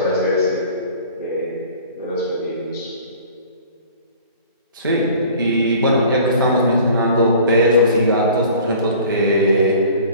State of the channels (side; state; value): both; inverted; correlation -0.47